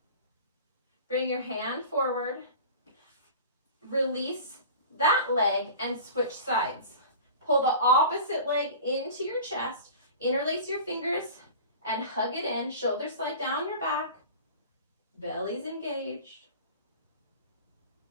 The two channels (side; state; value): both; inverted; correlation -0.38